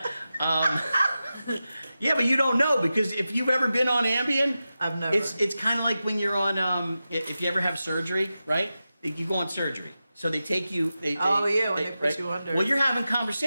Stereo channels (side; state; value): both; inverted; correlation -0.92